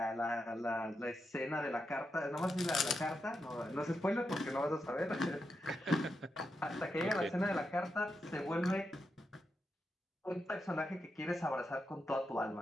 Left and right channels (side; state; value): both; normal; correlation 0.86